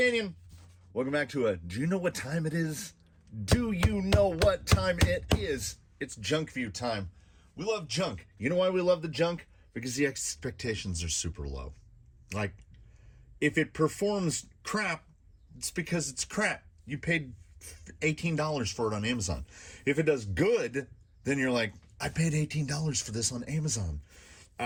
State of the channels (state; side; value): identical; both; correlation 1.00